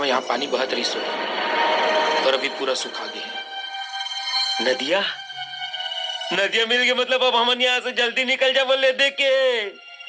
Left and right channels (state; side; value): identical; both; correlation 1.00